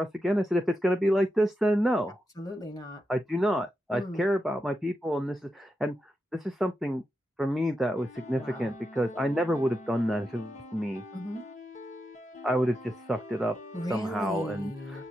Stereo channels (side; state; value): both; normal; correlation 0.87